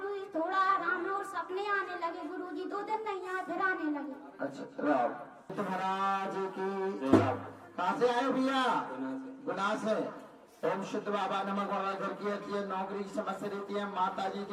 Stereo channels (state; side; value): identical; both; correlation 1.00